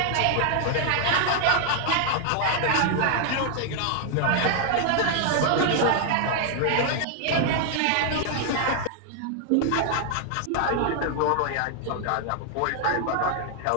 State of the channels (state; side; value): different; both; correlation 0.00